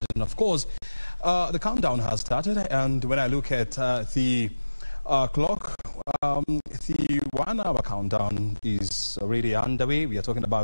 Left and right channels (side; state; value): both; inverted; correlation -1.00